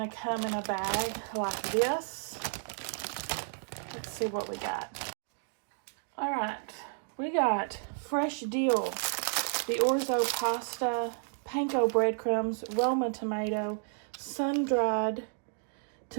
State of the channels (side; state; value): left; silent; digital silence